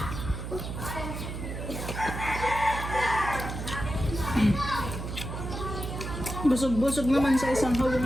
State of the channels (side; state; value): right; noise; hum, 6 dB below the sound